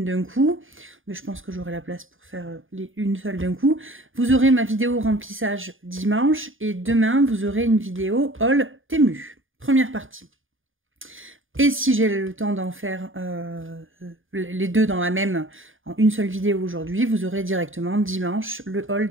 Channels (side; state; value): left; late; 0.58 ms